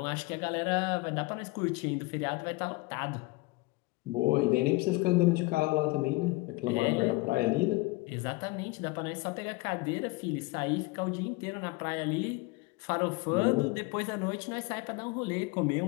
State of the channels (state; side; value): quieter; right; 23.5 dB